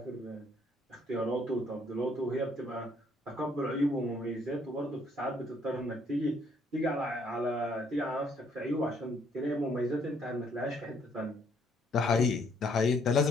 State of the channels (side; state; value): both; normal; correlation 0.66